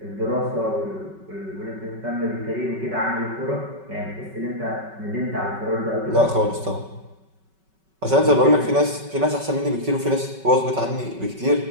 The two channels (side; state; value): left; late; 5.3 ms